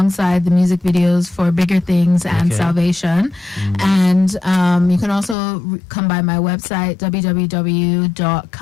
the music videos for Bigger Things and Salvation. And you can also come by my website,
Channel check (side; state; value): right; drops out; at 5.4 s